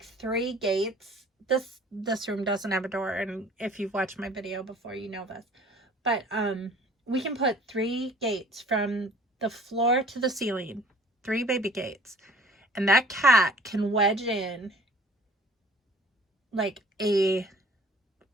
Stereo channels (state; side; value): normal; both; correlation 0.51